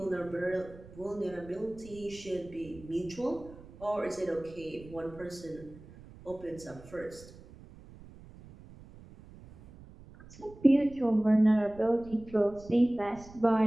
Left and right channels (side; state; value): right; noise; rumble, 19 dB below the sound